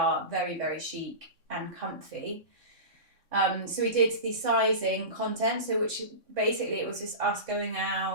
very, very chic and comfy. So we did the sizing content, which basically it was just us going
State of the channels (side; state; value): left; late; 3.8 ms